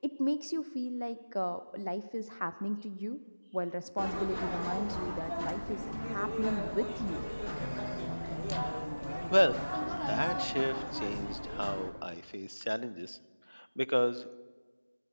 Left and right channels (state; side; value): inverted; both; correlation -1.00